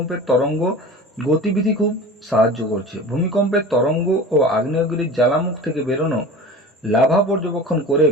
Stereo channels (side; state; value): both; normal; correlation 0.36